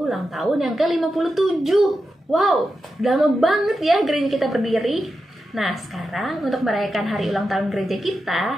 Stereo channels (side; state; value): both; normal; correlation 0.89